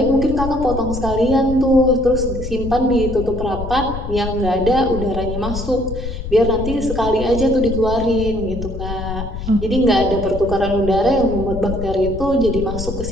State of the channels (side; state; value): left; noise; rumble, 7 dB below the sound